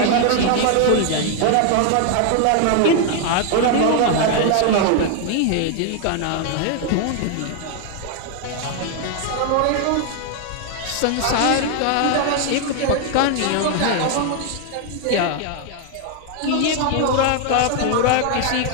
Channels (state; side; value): different; both; correlation 0.00